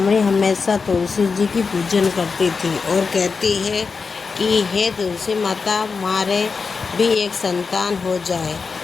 हमेशा तुलसी जी की पूजन करती थी और कहती है कि हे तुलसी माता मारे भी एक संतान हो जाए।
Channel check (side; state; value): right; quieter; 4.9 dB